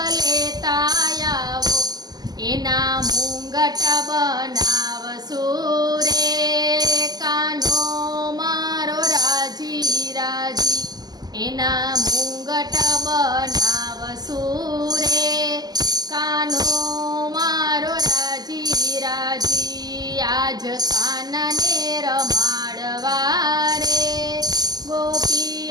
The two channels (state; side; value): late; left; 0.20 ms